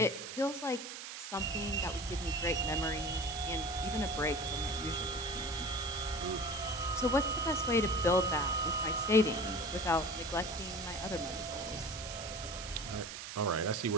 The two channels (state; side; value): noise; right; hiss, 9 dB below the sound